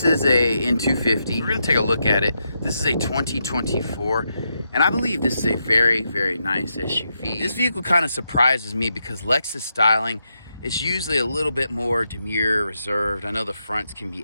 is a N250. We're gonna take a look at it. This is a 2024, and I believe this is a very, very nice SUV. This vehicle kind of surprises me because Lexus styling is usually a little bit more demure, reserved. I know the fronts can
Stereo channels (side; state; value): both; inverted; correlation -0.83